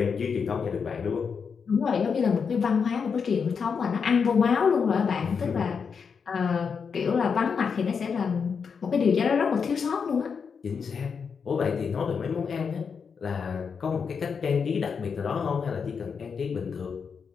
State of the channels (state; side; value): quieter; right; 6.0 dB